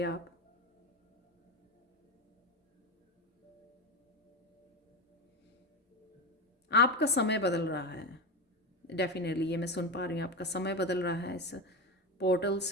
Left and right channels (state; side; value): normal; both; correlation 0.18